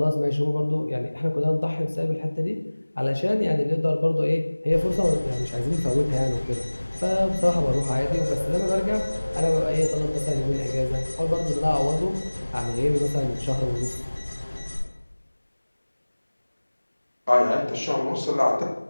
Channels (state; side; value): inverted; both; correlation -1.00